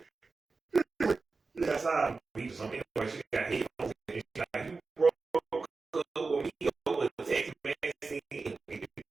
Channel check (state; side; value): quieter; left; 4.1 dB